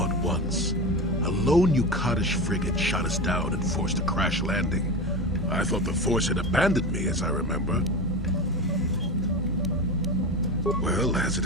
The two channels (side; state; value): both; normal; correlation 0.23